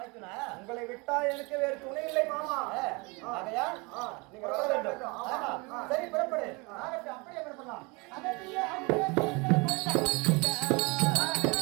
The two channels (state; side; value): quieter; left; 28.0 dB